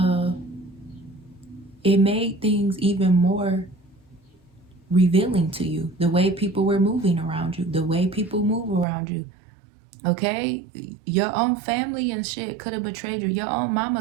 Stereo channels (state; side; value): drops out; left; at 8.8 s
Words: it made things even more revealing to you. The way people were moving around you. The way people move around you. Okay? Your own family and shit could have betrayed you. Your own